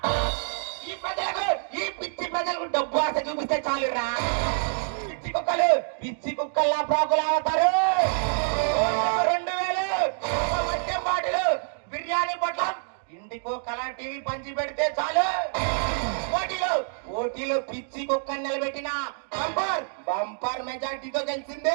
ఈ ప్రజలకు ఈ పిచ్చి ప్రజలకు డబ్బు ఆశ చూపిస్తే చాలురా. పిచ్చి కుక్కల్లా ప్రాకులు అవుతారు. 2000 మద్యం బాటిలు బిర్యానీ పొట్లం ఇంటికో కలర్ టీవీ పంచి పెడితే చాలు. ఓటీలో పిచ్చి కుక్కని నిలబెట్టిన బంపర్ మెజార్టీతో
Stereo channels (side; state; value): left; silent; digital silence